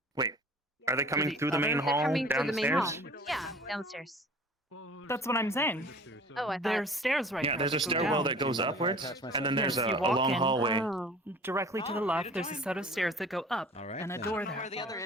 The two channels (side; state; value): both; normal; correlation 0.46